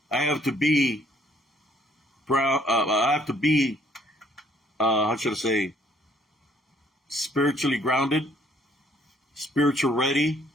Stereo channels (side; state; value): both; normal; correlation 0.63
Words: I have to be proud. I have to be, how should I say, spiritually grounded, spiritual ready.